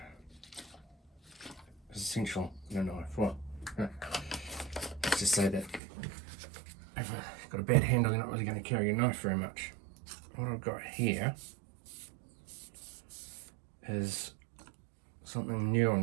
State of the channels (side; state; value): left; drops out; at 5.8 s